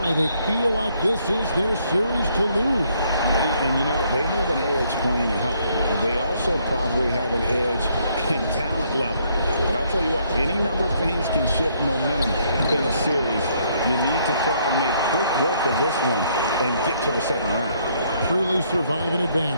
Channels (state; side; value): inverted; both; correlation -0.69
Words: They feel like this is their series to lose. And you know, they have an edge playing at home. They also probably have an edge in talent level. But I'll tell you what, any number of things can shift momentum in a series. You need to try and make quick work of this one and get to the second round. Truly survive and